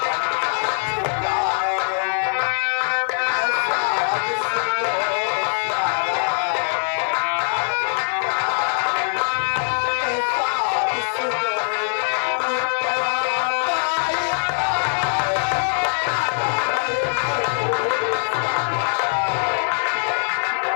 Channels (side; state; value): right; silent; digital silence